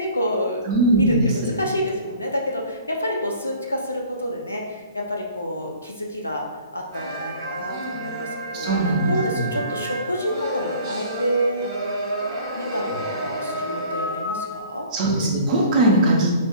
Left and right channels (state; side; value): inverted; both; correlation -0.49